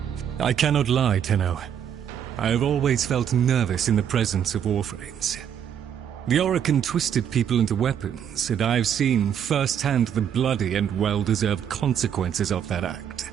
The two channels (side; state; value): left; quieter; 8.9 dB